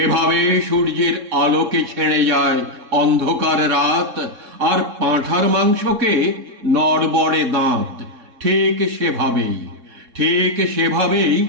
সূর্যের আলোকে ছেড়ে যায় অন্ধকার রাত, আর পাঁঠার মাংসকে নড়বড়ে দাঁত, ঠিক সেভাবেই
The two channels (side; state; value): left; late; 3.7 ms